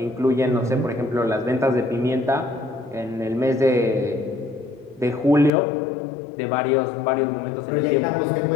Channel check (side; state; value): right; drops out; at 5.5 s